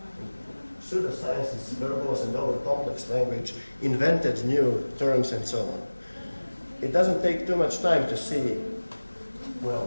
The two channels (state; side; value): inverted; both; correlation -1.00